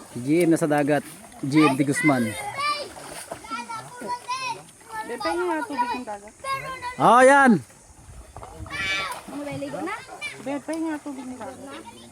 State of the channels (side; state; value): both; identical; correlation 1.00